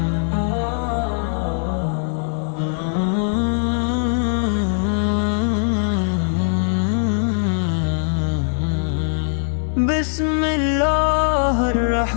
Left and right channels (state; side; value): silent; right; 65 dB below the other